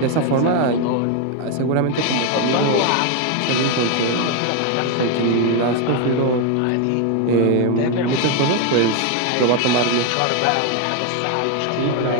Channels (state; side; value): different; both; correlation 0.01